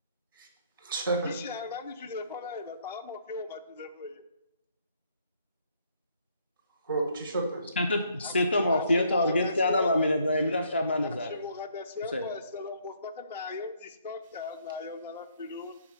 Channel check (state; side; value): inverted; both; correlation -0.68